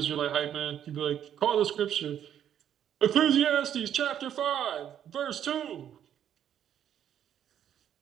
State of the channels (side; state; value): left; quieter; 9.9 dB